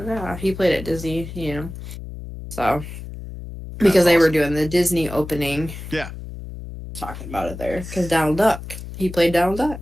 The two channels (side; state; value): left; noise; hum, 11 dB below the sound